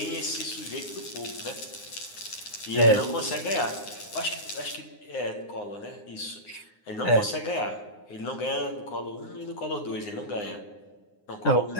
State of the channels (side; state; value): right; late; 9.7 ms